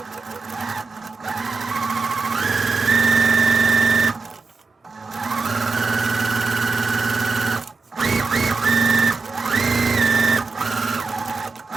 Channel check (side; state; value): left; quieter; 4.3 dB